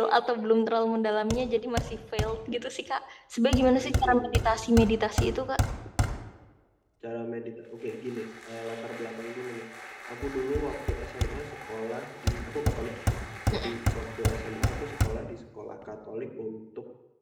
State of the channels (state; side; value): identical; both; correlation 1.00